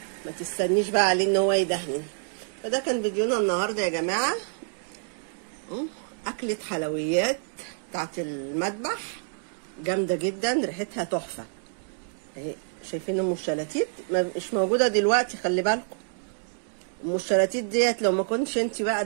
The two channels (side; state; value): left; silent; digital silence